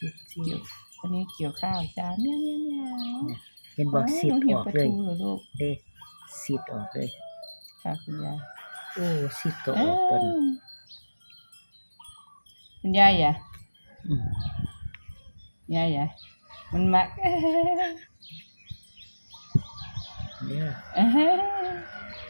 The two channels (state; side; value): inverted; both; correlation -1.00